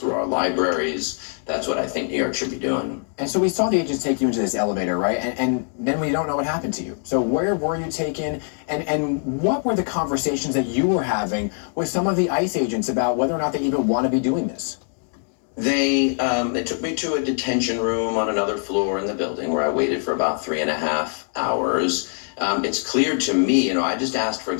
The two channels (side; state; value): right; silent; 57 dB below the other